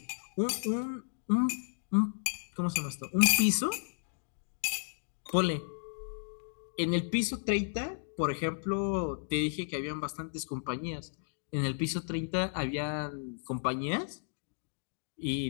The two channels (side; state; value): right; silent; digital silence